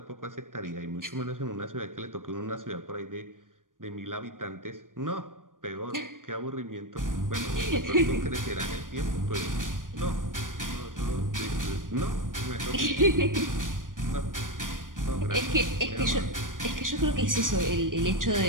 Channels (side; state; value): left; late; 0.90 ms